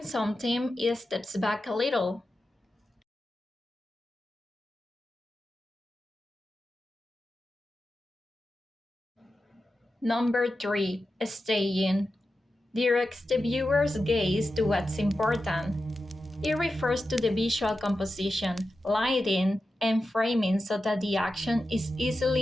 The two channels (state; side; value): normal; both; correlation 0.91